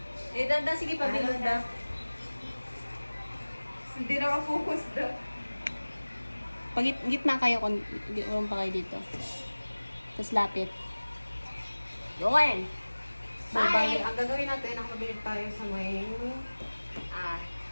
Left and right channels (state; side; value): inverted; both; correlation -1.00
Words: Eh, dada, sige, pabilog daw. Hindi na ka-focus daw. Pag gitna kayo, urong pa kayo dito. Tapos lapit. Yun! So, bali, ang gagawin natin, nakapabilig tayo sa may...